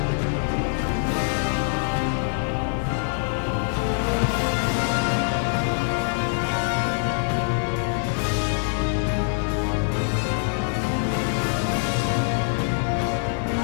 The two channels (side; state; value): right; silent; digital silence